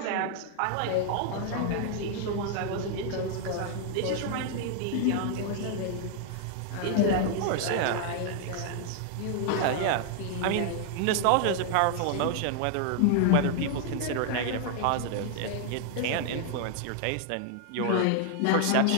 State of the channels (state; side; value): different; both; correlation 0.00